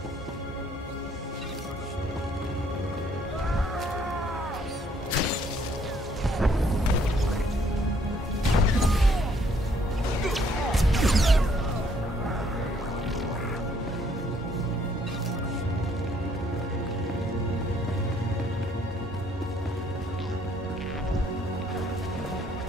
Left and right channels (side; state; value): both; normal; correlation 0.65